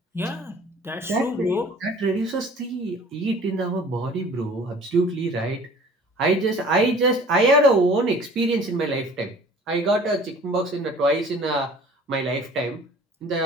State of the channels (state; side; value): normal; both; correlation 0.48